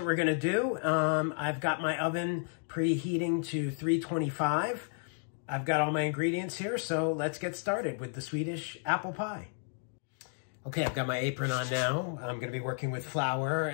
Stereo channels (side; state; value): right; silent; 56 dB below the other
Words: we're gonna do. I've got my oven preheating to 325. I've got all my ingredients here, so let's get started with the Swedish apple pie. Okay, I've got my apron on now. I'm going to be working with flour